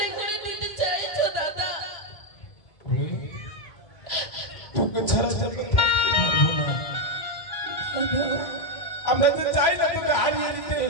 করে দিতে চাইছো দাদা? তোকে ছাড়া যাবে থাকতে পারবো না। আমরা তো চাই না তোকে হারিয়ে দিতে,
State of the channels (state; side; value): late; right; 1.9 ms